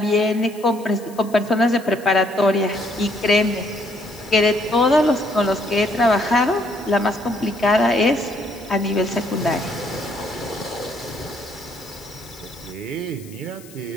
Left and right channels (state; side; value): noise; left; hiss, 22 dB below the sound